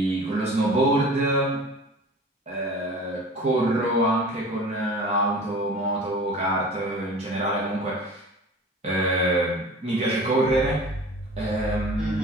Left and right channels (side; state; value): both; normal; correlation 0.40